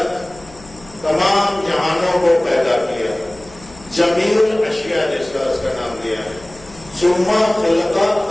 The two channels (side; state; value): left; noise; hum, 22 dB below the sound